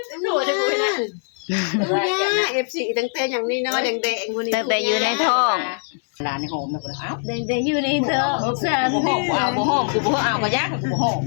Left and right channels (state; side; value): silent; right; 60 dB below the other